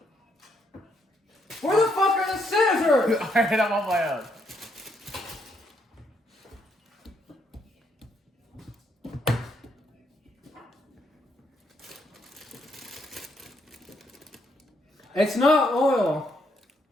Where the fuck are the scissors? Alright, I'm on my own. It's not oil.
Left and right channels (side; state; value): both; normal; correlation 0.74